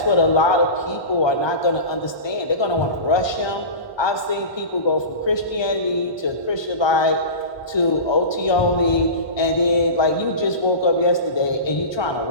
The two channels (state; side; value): late; right; 1.2 ms